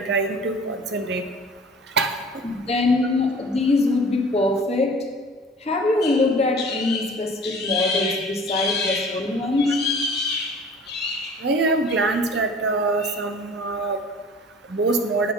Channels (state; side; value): normal; both; correlation 0.46